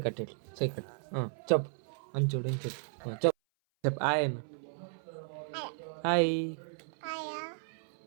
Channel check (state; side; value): silent; left; 55 dB below the other